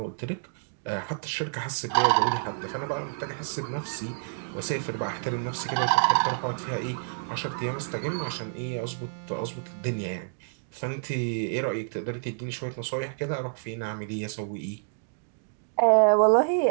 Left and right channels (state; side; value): silent; left; digital silence